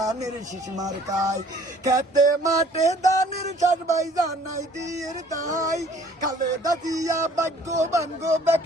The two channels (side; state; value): both; normal; correlation 0.55